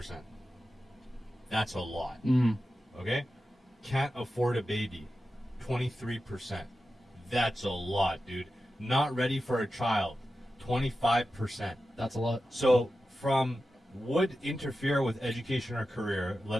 That's a lot. Mm. Okay? Can't afford a baby, 23%. That's a lot, dude. Not ready for a child, 25%. That's a lot. So from would interfere with education or career,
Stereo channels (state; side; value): normal; both; correlation 0.92